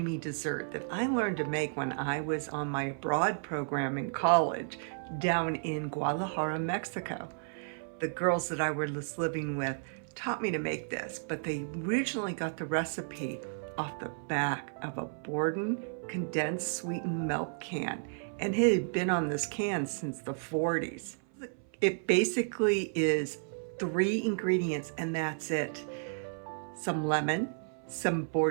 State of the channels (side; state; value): left; silent; 56 dB below the other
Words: dessert that I learned to make when I was on my abroad program in college down in Guadalajara, Mexico. The girls that I was living with taught me to make this, but they originally got the recipe off the back of a Borden condensed sweetened milk can, and it had been on this can since the 40s. It basically is 3 ingredients and that's it. Some lemon, some